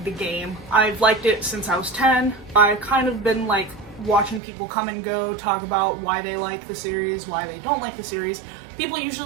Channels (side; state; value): left; drops out; at 4.4 s